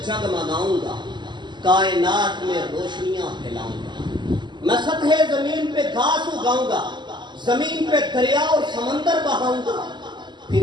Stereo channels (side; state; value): left; late; 0.22 ms